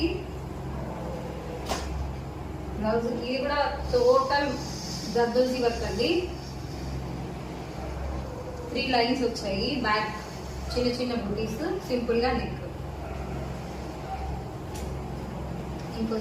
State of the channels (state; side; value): identical; both; correlation 1.00